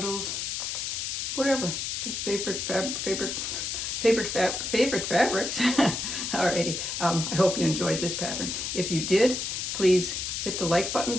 whatever. Just favorite favorite fabrics. Alrighty, I hope you enjoyed this pattern. If you did, please hit the like button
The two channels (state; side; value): noise; left; hiss, 3 dB below the sound